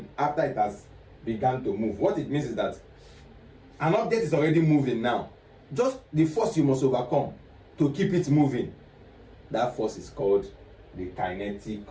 after it has begun to move. What it means is that an object is already moving now. Just the force you must overcome to keep it moving. That force is called the kinetic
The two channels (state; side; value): identical; both; correlation 1.00